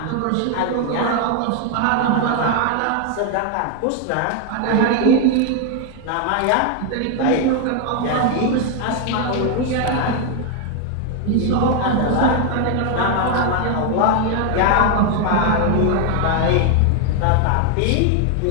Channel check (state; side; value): different; both; correlation 0.01